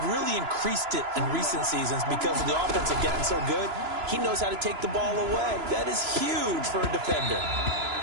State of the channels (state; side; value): late; left; 3.0 ms